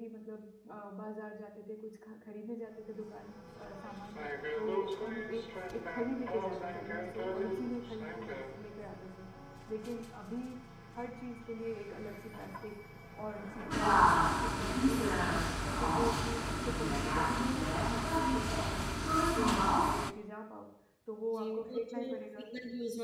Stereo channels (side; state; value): both; identical; correlation 1.00